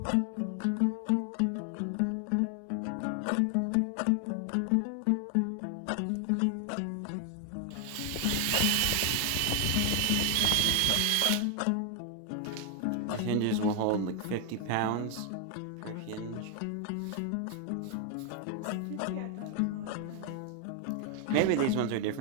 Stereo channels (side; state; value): both; different; correlation 0.00